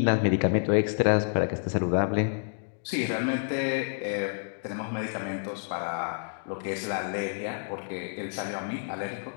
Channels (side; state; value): right; silent; digital silence